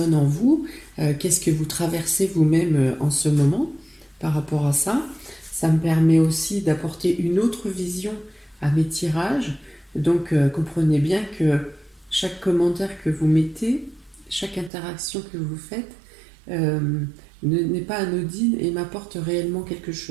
en vous. Qu'est-ce que vous traversez vous-même en ce moment par rapport à ça. Ça me permet aussi d'apporter une autre vision à mes tirages. Donc comprenez bien que chaque commentaire que vous mettez, chaque interaction que vous faites n'est pas anodine et m'apporte réellement quelque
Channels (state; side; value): drops out; left; at 14.7 s